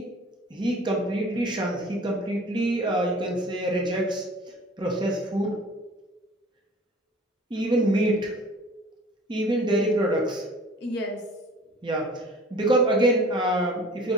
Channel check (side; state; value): both; normal; correlation 0.47